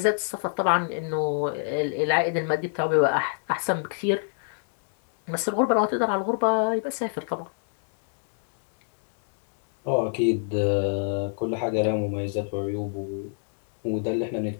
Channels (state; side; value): silent; right; digital silence